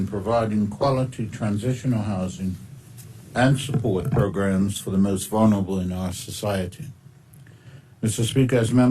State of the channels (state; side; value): identical; both; correlation 1.00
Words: providing quality transitional housing and support programs for the most vulnerable in our society. Mr. Speaker, as